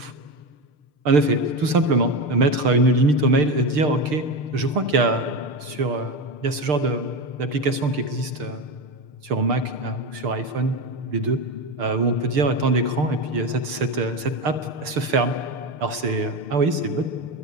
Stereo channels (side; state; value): left; late; 6.7 ms